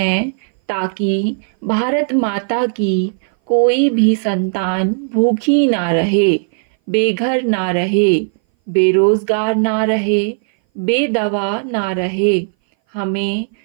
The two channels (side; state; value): left; silent; 60 dB below the other